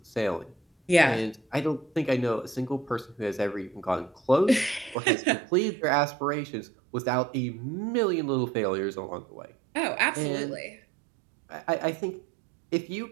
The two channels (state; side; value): drops out; left; at 5.0 s